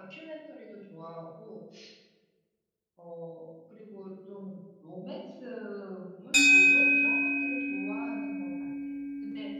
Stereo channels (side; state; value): both; identical; correlation 1.00